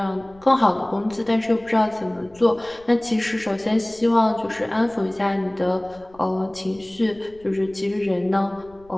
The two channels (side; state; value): left; noise; rumble, 27 dB below the sound